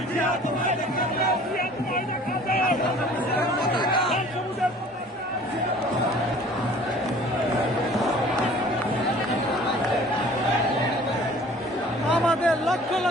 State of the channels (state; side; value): normal; both; correlation 0.49